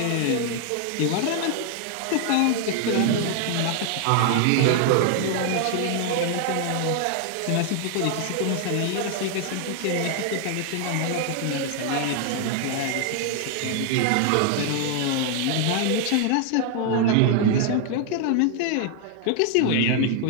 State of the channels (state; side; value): different; both; correlation 0.00